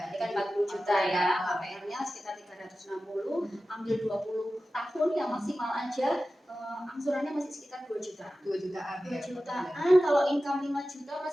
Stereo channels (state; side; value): normal; both; correlation 0.95